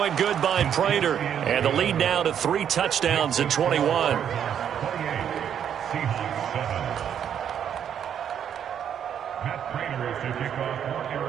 good by Prater, and the lead now to 3 touchdowns at 21.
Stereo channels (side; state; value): left; quieter; 8.9 dB